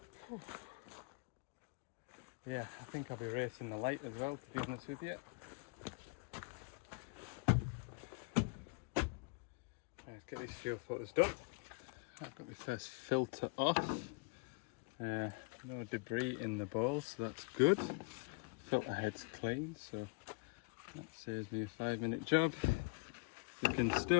Yeah, I think I'll be racing the light as well, to be honest with you. Let's get these fuel filters done. I've got my first filter off. No debris in the bowl, so that's good. Filter head's clean, so that saves me a 5-minute job. You can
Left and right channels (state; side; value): quieter; right; 32.7 dB